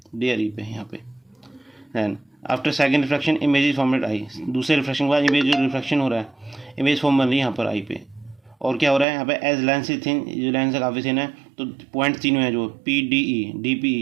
D और E पे यहाँ पे। Then after second reflection image is form at I, दूसरे रिफ्लेक्शन के बाद इमेज जो रिफ्लेक्शन हो रहा है इमेज फॉर्म बन रही है यहाँ पर I पे। और क्या हो रहा है यहाँ पे, एज लेंस इज थिन, जो लेंस है काफ़ी थिन है, तो पॉइंट तीनों है जो PDE,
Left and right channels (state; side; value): drops out; left; at 9.1 s